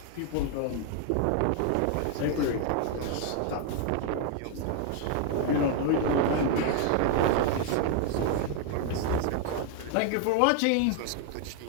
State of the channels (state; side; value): different; both; correlation 0.00